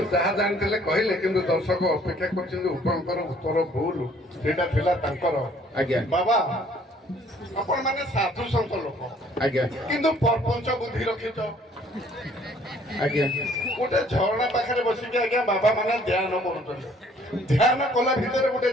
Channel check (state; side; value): normal; both; correlation 0.59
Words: ଯାହା ଜାଣିଥିଲେ କହିଲେ, କିନ୍ତୁ ଦର୍ଶକ ଅପେକ୍ଷା କରିଛନ୍ତି ଉପଙ୍କର ଉତ୍ତର ଭୁଲ, ସେଇଟା ଥିଲା ତାଙ୍କର। ଆଜ୍ଞା ବାବା ଆପଣ ମାନେ ସାଧୁ ସନ୍ଥ ଲୋକ, ଆଜ୍ଞା କିନ୍ତୁ ପ୍ରପଞ୍ଚ ବୁଦ୍ଧି ରଖିଛ। ଆଜ୍ଞା ଗୋଟେ ଝରଣା ପାଖରେ ବସିକି ଆଜ୍ଞା ବାବା ମାନେ ଧ୍ୟାନ କରୁଛନ୍ତି। ଧ୍ୟାନ କଲା ଭିତରେ ଗୋଟେ